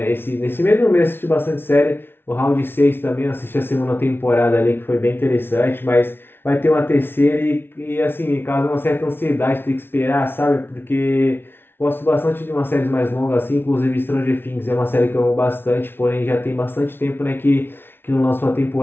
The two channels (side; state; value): right; late; 0.11 ms